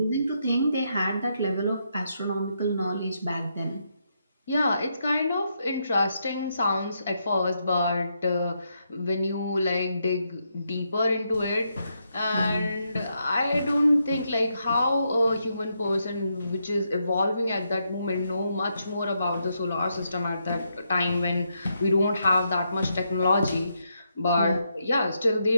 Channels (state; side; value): inverted; both; correlation -0.80